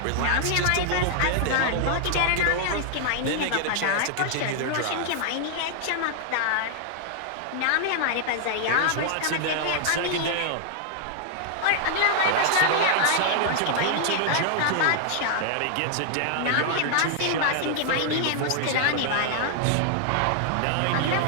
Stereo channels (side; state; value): both; different; correlation -0.01